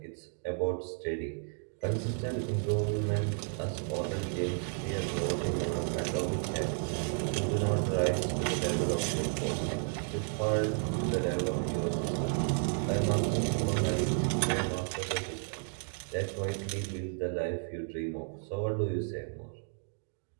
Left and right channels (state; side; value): silent; left; 56 dB below the other